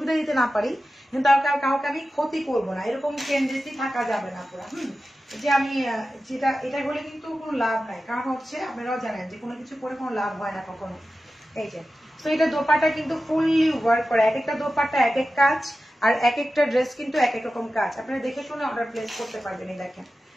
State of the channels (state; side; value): normal; both; correlation 0.94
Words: দিতে না পারি, কিন্তু কাউকে আমি ক্ষতি করবো না, এরকম টেন্ডেন্সি থাকা যাবে না পুরো। যে আমি যেটা এটা হলে কিন্তু কোনো লাভ নাই, কারণ হচ্ছে আপনারাও জানেন যে কোনো কিছু করে কোনো লাভ হয় না কখনো। এই যে তো এটা দোপাট্টা কিন্তু ফুললি ওয়ার্ক করে, এক একটা দোপাট্টা এক এক কাজ, আর এক একটা ড্রেস কিন্তু এক এক রকম কাজ। আপনারা দেখে শুনে অর্ডার প্লেস করতে পারবেন। এই দেখেন